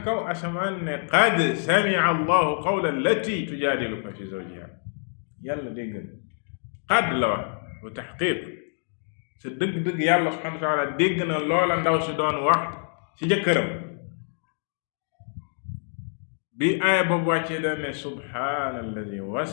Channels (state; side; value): silent; right; 58 dB below the other